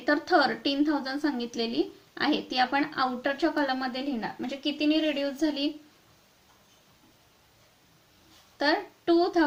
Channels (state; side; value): identical; both; correlation 1.00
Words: तर 13,000 सांगितलेली आहे. ती आपण आउटरच्या कॉलम मध्ये लिहिणार. म्हणजे कितीनी रिड्यूस झाली, तर